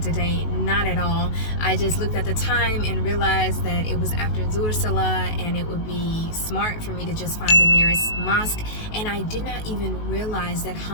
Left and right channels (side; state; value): right; late; 19 ms